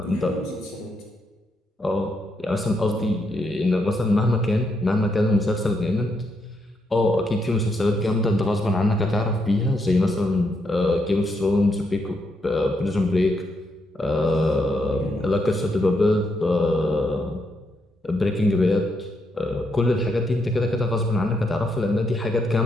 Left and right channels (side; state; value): both; normal; correlation 0.79